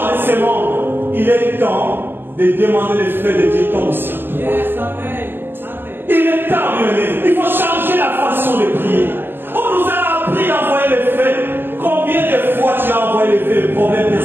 de ce monde. Il est temps de demander le feu de Dieu tombe au ciel. Il est temps, bien-aimé. Il faut changer la façon de prier. On nous a appris d'envoyer le feu. Combien de fois tu as envoyé le feu, le problème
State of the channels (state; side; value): late; left; 0.099 ms